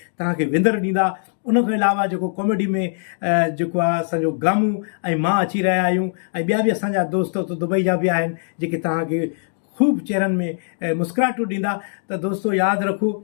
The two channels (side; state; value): right; silent; digital silence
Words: तव्हांखे विंदर ॾींदा। उनखां अलावा जेको कॉमेडी में जेको आहे असांजो गामू ऐं मां अची रहिया आहियूं, ऐं ॿिया बि असांजा दोस्त हुते दुबई जा बि आहिनि जेके तव्हांखे ख़ूब चेहरनि में मुस्कुराहटूं ॾींदा। त दोस्तों यादि रखो,